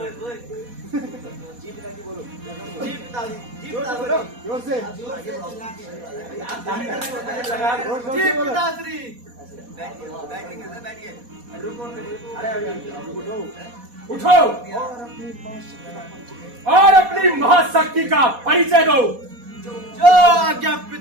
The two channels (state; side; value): late; left; 4.1 ms